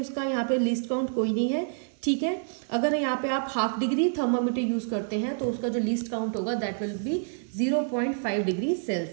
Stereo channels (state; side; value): silent; left; digital silence